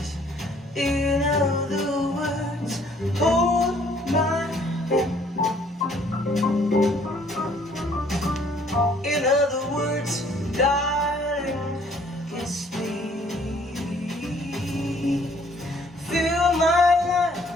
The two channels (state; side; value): normal; both; correlation 0.61